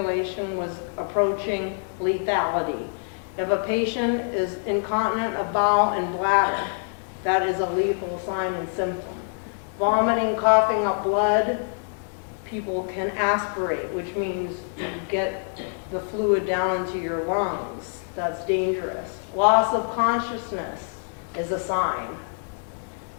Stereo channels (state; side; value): silent; right; 61 dB below the other